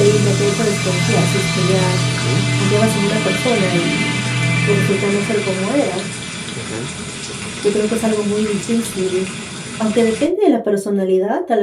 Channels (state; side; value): identical; both; correlation 1.00